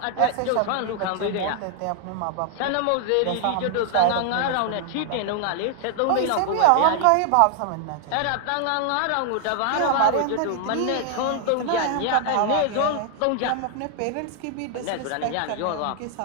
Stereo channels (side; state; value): both; different; correlation 0.00